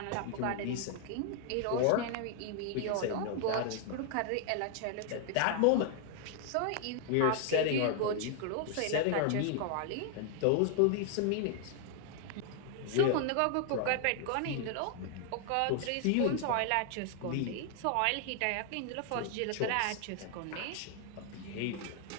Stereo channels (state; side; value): different; both; correlation 0.00